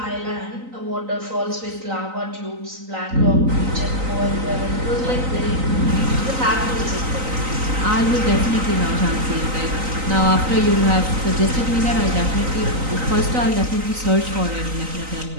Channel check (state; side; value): late; left; 3.9 ms